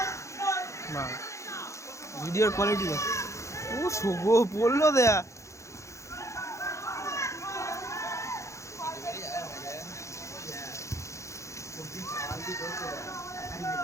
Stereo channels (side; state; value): right; late; 0.14 ms